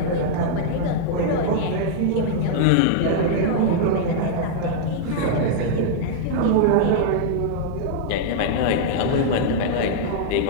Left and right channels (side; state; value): both; different; correlation -0.02